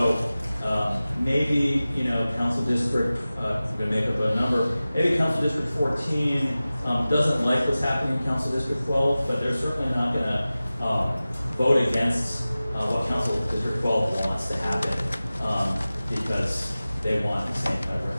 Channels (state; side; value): inverted; both; correlation -0.97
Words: maybe, council district, I'm gonna make up a number, maybe council district 14 doesn't like what's happening in council district 12, but they're certainly not gonna vote against what council district 12 wants to happen because they want the same kind